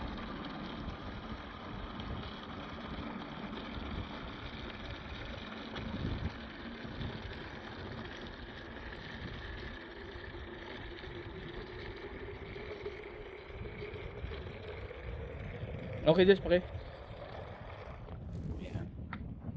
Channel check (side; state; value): both; identical; correlation 1.00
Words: Okay, Jess, pake. Ayan.